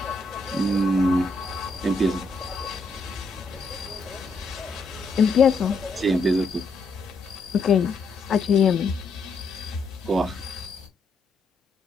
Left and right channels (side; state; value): right; quieter; 3.2 dB